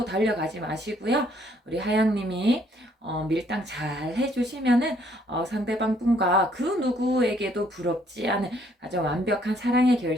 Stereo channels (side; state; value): both; normal; correlation 0.66